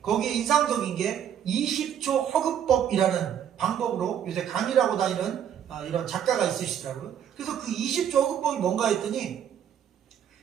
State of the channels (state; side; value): quieter; left; 9.3 dB